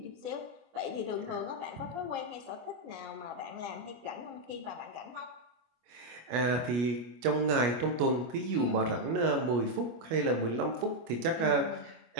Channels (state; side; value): late; left; 25 ms